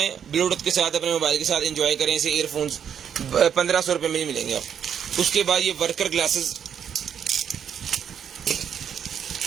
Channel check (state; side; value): quieter; left; 8.3 dB